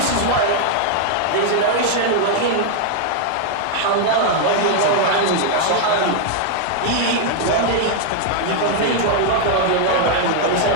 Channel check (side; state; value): both; different; correlation 0.00